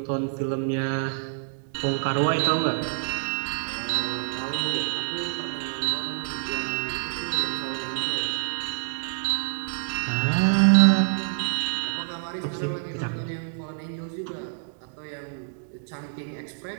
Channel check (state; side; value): silent; left; 60 dB below the other